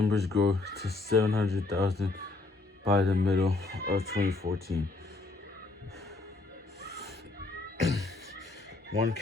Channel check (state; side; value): quieter; right; 3.4 dB